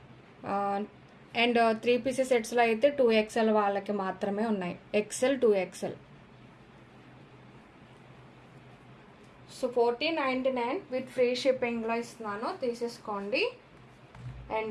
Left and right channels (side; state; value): both; identical; correlation 1.00